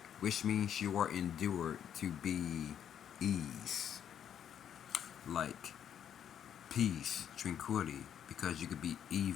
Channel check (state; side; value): quieter; right; 9.3 dB